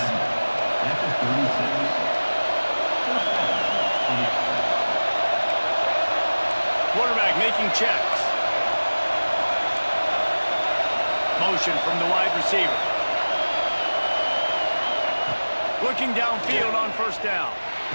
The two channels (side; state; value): both; inverted; correlation -1.00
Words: Quarterback making checks. Motion from the wide receiver. Looking downfield on 1st down.